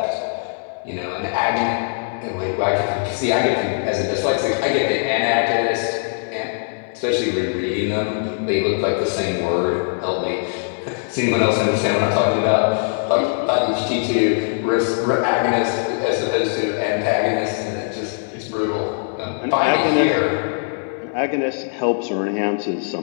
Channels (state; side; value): silent; right; 64 dB below the other